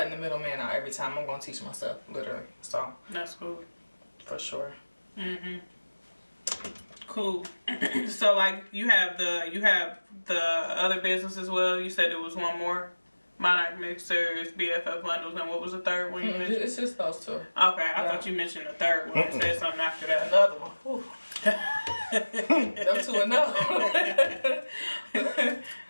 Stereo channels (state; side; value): inverted; both; correlation -1.00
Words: the middleman out every time. I'm gonna teach myself literally. So That's cool. for sure. Cool. So like you have the other business as well. You said there was one more. Monarch Mixers, BFF Bundles, and what was the third one you mentioned? It's just those two. Okay, I thought you mentioned the third one and said something after that. Another one. Them two another one.